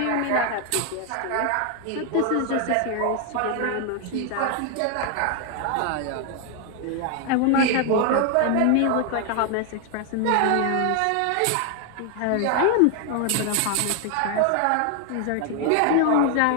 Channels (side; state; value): both; different; correlation 0.00